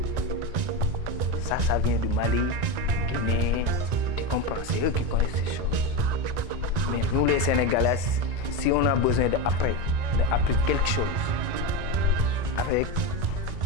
Ça vient du Mali, Guinée. Tu comprends? C'est eux qui connaissent ces choses. Mais nous, les Sénégalais, si on a besoin d'apprendre quelque chose, avec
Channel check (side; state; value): left; late; 1.9 ms